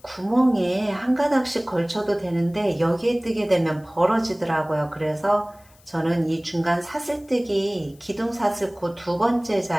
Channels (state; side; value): noise; left; hiss, 29 dB below the sound